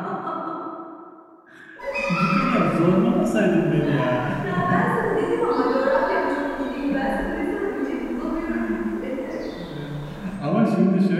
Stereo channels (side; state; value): both; identical; correlation 1.00